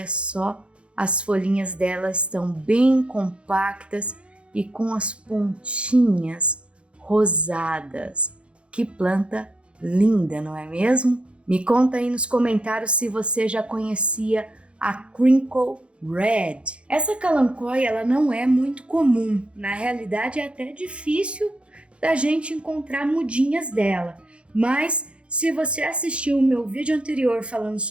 só, as folhinhas dela estão bem compactas e com as pontinhas rosadas. Que planta linda, não é mesmo? Me conta aí nos comentários se você já conhecia a Crinkle Red. Essa Kalanchoe ela não é muito comum, na realidade é até difícil da gente encontrar mudinhas dela, mas se você assistiu o meu vídeo anterior falando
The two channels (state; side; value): late; left; 0.059 ms